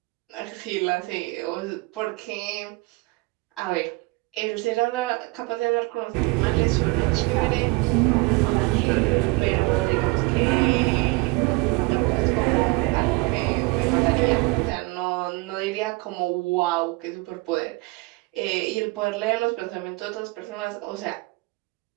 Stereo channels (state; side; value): quieter; left; 25.3 dB